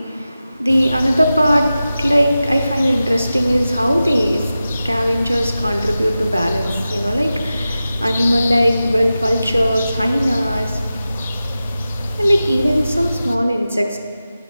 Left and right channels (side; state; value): both; inverted; correlation -0.94